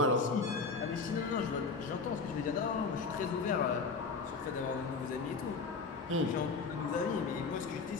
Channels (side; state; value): right; quieter; 4.5 dB